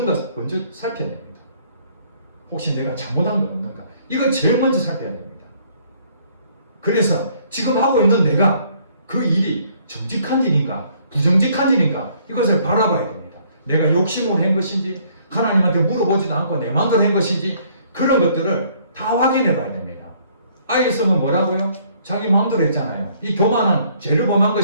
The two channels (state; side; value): inverted; both; correlation -0.63